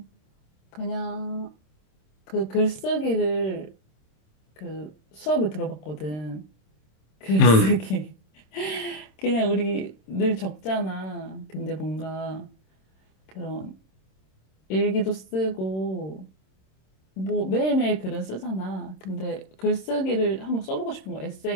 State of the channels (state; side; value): late; right; 26 ms